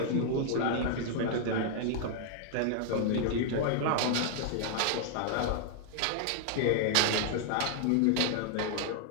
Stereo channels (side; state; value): both; different; correlation 0.00